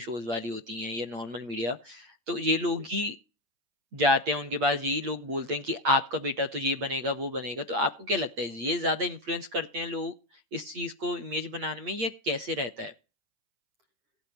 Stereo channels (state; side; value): late; left; 8.5 ms